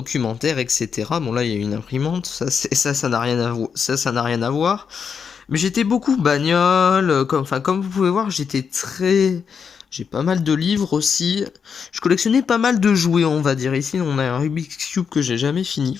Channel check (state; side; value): quieter; right; 6.5 dB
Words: etc. Bon là il y a une imprimante, ça n'a rien à ça n'a rien à voir. Mais j'étais beaucoup bagnole, comme vous pouvez voir, j'ai pas mal de livres aussi. Je collectionnais pas mal de jouets, on va dire. Ici, on a un Rubik's Cube que j'ai jamais fini,